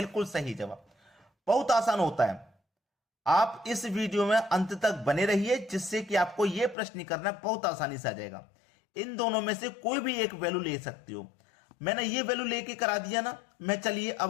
सही जवाब। बहुत आसान होता है। आप इस वीडियो में अंत तक बने रहिए, जिससे कि आपको यह प्रश्न करना बहुत आसानी से आ जाएगा। इन दोनों में से कोई भी एक वैल्यू ले सकते हो। मैंने ये वैल्यू लेके करा दिया ना, मैं चलिए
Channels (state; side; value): drops out; right; at 6.8 s